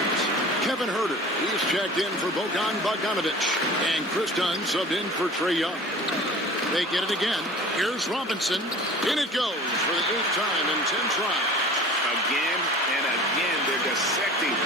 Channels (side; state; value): both; normal; correlation 0.42